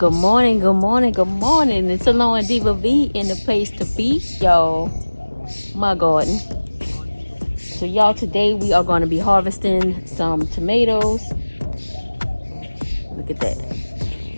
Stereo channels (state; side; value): inverted; both; correlation -1.00